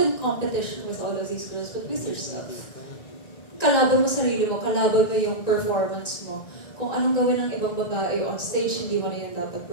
competition with all of these girls, but with yourself. Kalaban mo sarili mo, kalaban mo yung performance mo. Kung anong gawin ng ibang babae on stage, hindi mo na yun dapat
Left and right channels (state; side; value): late; right; 1.9 ms